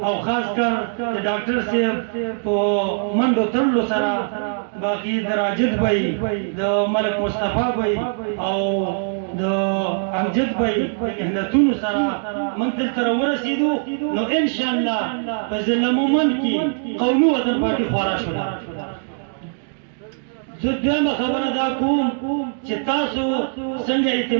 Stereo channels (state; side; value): silent; left; digital silence